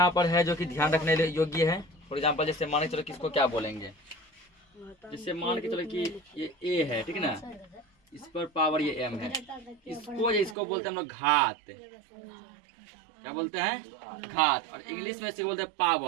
पर है जो कि ध्यान रखने योग्य है। फॉर एग्जाम्पल, जैसे मान के चलो किसको क्या बोलेंगे, जैसे मान के चलो कि ये ए है, ठीक ना, इस पर पावर ये एम है, इसको बोलते हैं हम लोग घात। क्या बोलते हैं? घात। और इंग्लिश में इसको बोलते हैं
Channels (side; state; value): left; drops out; at 10.6 s